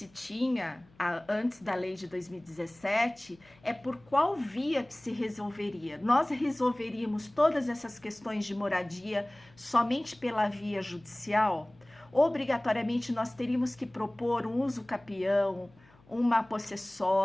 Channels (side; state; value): left; noise; hum, 29 dB below the sound